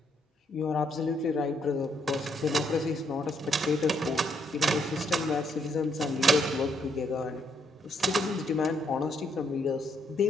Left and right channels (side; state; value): both; normal; correlation 0.73